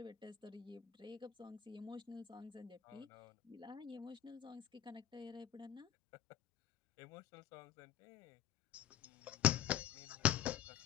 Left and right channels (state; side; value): quieter; right; 10.8 dB